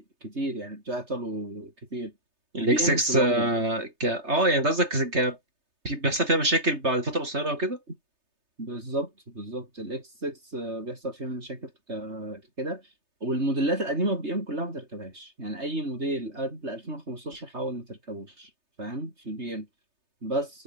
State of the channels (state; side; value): late; left; 3.3 ms